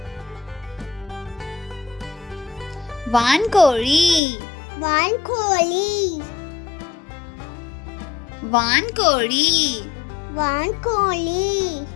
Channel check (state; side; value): drops out; right; at 4.2 s